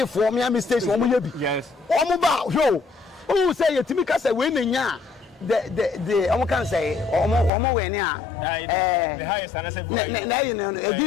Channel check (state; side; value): drops out; right; at 7.5 s